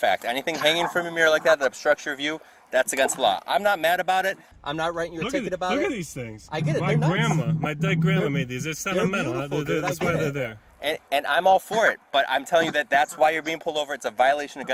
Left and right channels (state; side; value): identical; both; correlation 1.00